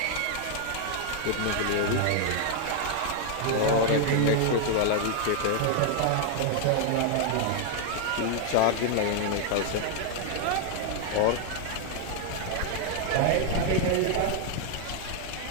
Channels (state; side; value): different; both; correlation 0.00